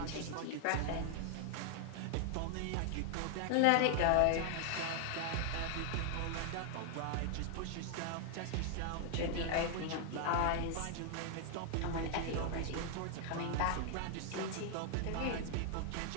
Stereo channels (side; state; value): both; different; correlation 0.00